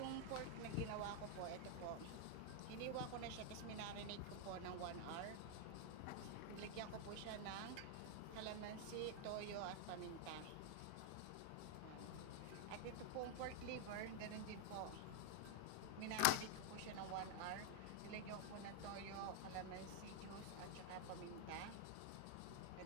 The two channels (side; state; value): both; different; correlation 0.00